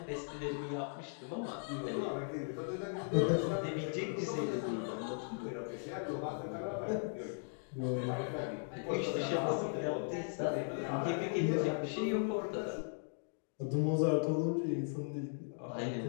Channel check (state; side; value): silent; right; digital silence